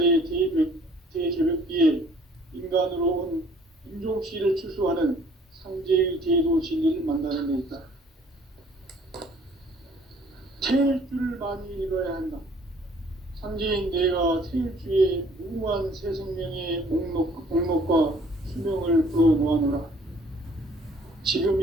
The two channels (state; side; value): normal; both; correlation 0.57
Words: 대개벽기에 인간으로 온 인종씨를 추수하는 상제의 제도 진리를 만나는 데 있다. 태일주를 많이 읽어야 한다. 상제인 내가 태일주의 무궁한 새 생명의 목록과 수명을 풀어놓아노라. 지금